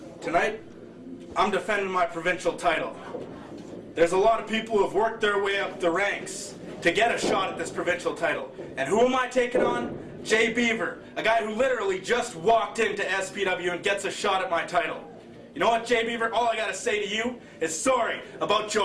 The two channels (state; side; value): identical; both; correlation 1.00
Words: Tonight, I'm defending my provincial title. There's a lot of people who have worked their way up the ranks to get a shot at this provincial title. And who am I taking on? Jay Beaver, a guy who literally just walked into SPW and gets a shot at my title. You know what, Jay Beaver? All I gotta say to you is sorry about